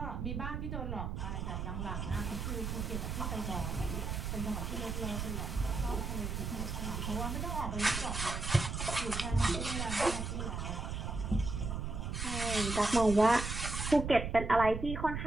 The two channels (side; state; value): right; noise; rumble, 3 dB below the sound